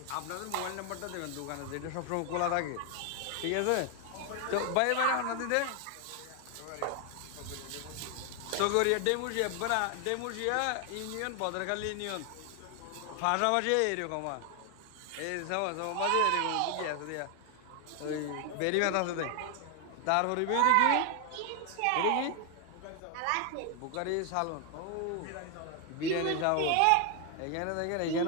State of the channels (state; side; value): different; both; correlation 0.00